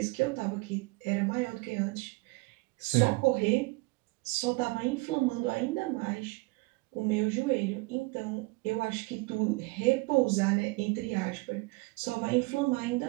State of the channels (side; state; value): left; quieter; 26.0 dB